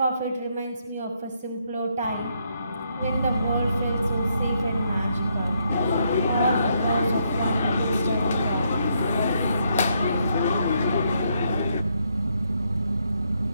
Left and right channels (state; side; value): inverted; both; correlation -0.75